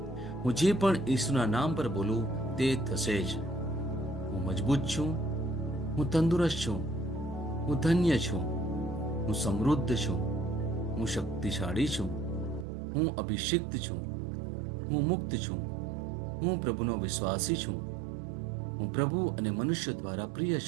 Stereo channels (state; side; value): drops out; left; at 12.7 s